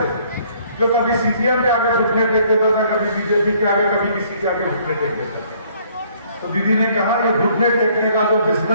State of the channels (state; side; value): inverted; both; correlation -0.62